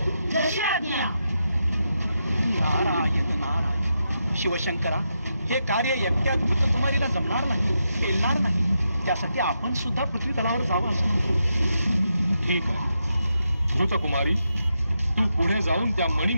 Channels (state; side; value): inverted; both; correlation -0.85